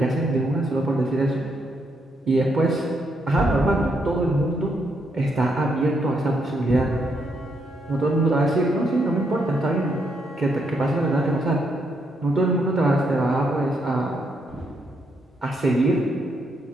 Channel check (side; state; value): both; normal; correlation 0.77